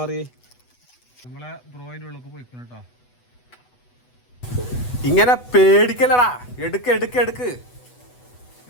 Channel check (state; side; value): late; right; 8.1 ms